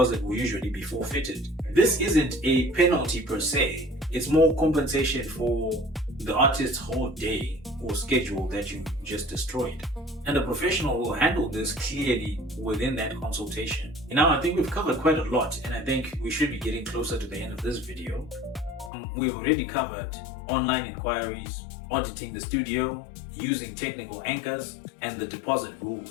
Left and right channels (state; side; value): drops out; right; at 18.9 s